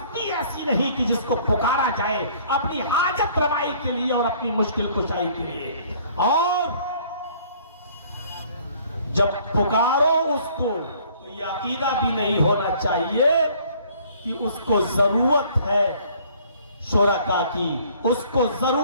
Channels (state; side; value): inverted; both; correlation -0.57